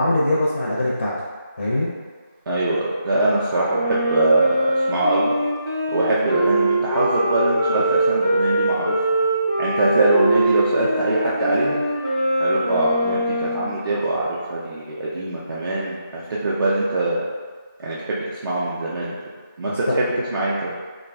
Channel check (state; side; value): inverted; both; correlation -0.78